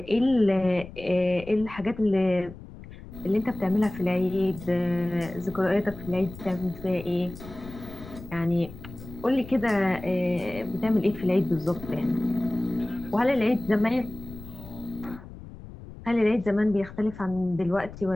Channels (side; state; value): left; noise; rumble, 15 dB below the sound